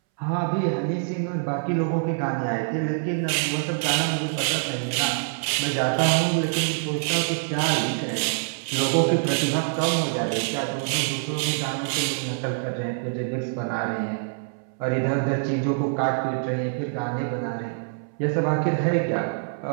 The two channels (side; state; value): left; silent; 62 dB below the other